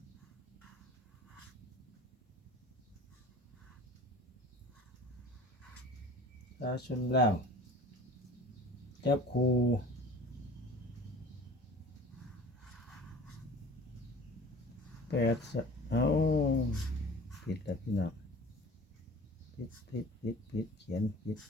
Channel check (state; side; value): normal; both; correlation 0.43